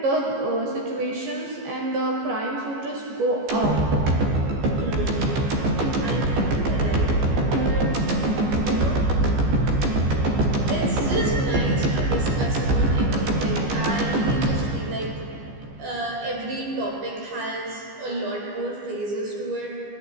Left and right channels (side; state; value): left; late; 15 ms